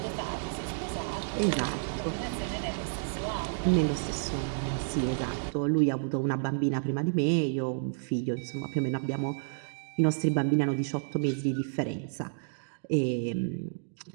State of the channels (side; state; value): left; silent; digital silence